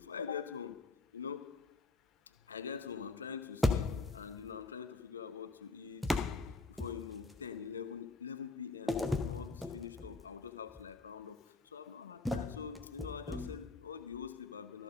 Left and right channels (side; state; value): right; quieter; 3.5 dB